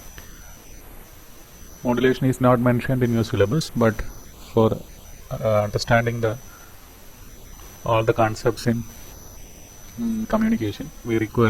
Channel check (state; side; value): identical; both; correlation 1.00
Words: Modulation is not mentioned in your syllabus, but for understanding all the concepts in communication, we